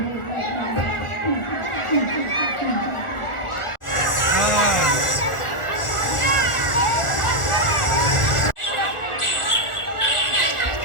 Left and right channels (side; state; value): right; late; 1.4 ms